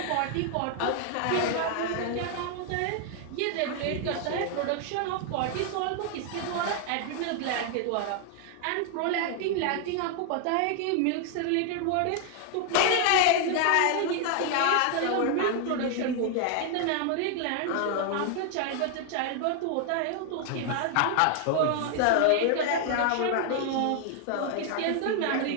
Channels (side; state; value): both; different; correlation 0.00